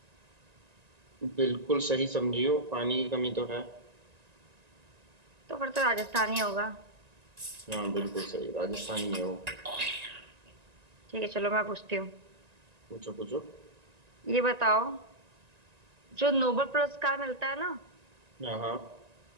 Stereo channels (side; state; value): left; late; 1.9 ms